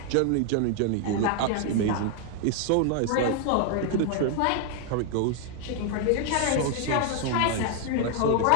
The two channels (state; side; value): different; both; correlation 0.00